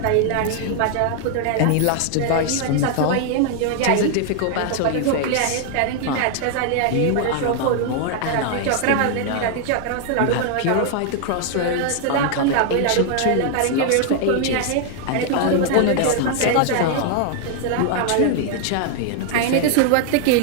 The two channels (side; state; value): both; different; correlation 0.00